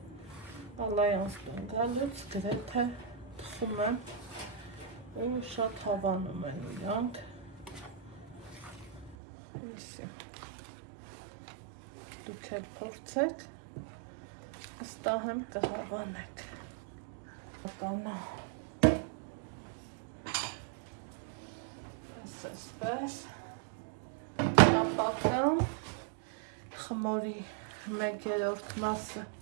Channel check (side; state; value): left; drops out; at 9.2 s